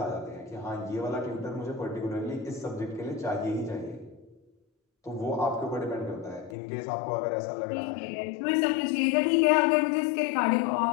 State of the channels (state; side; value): drops out; right; at 6.6 s